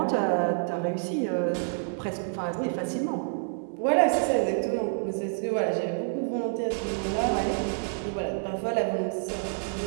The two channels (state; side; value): silent; left; digital silence